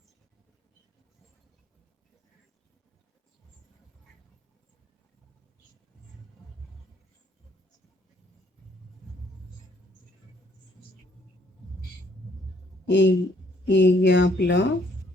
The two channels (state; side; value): normal; both; correlation 0.66